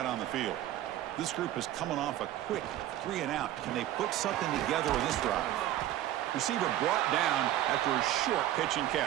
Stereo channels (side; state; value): left; quieter; 13.2 dB